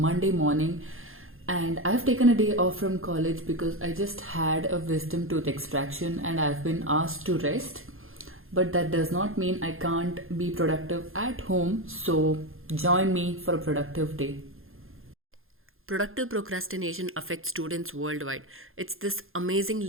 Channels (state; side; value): late; left; 0.60 ms